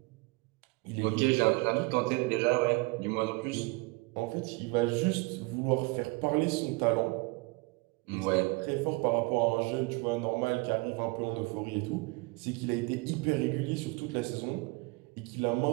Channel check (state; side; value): quieter; left; 25.5 dB